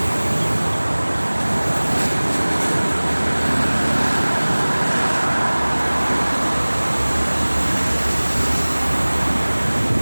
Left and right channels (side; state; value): both; inverted; correlation -1.00